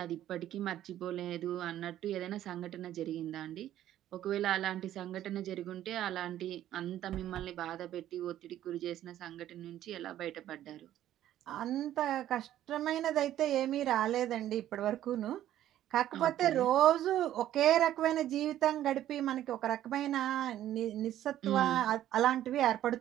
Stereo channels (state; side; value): quieter; left; 12.4 dB